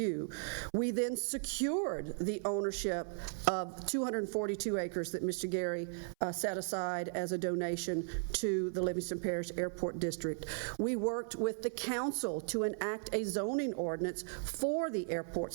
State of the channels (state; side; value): silent; left; 53 dB below the other